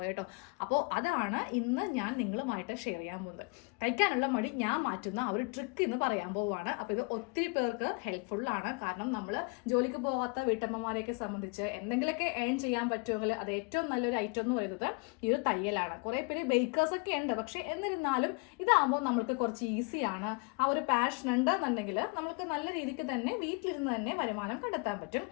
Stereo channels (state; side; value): quieter; right; 31.6 dB